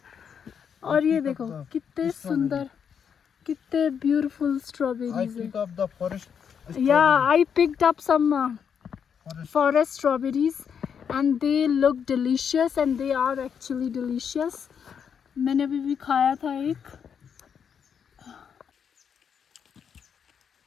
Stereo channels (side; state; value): right; quieter; 7.4 dB